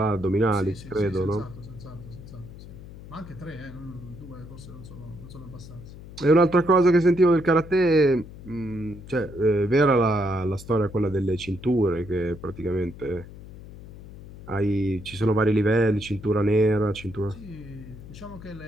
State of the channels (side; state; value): left; noise; hum, 16 dB below the sound